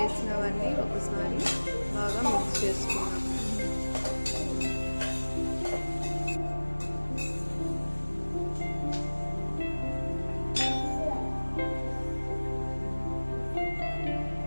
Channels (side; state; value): both; inverted; correlation -1.00